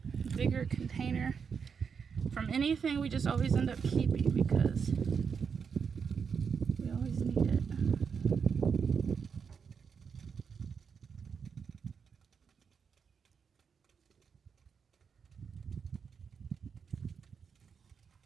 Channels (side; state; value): left; quieter; 6.3 dB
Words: bigger container from anything we just always end up keeping because we always need it.